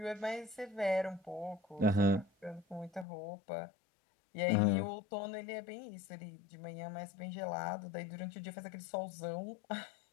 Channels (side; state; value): right; drops out; at 3.1 s